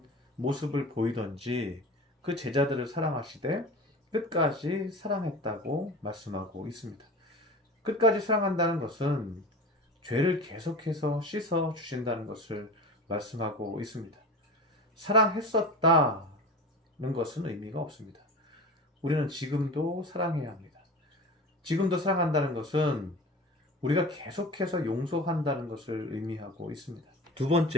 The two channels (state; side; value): normal; both; correlation 0.34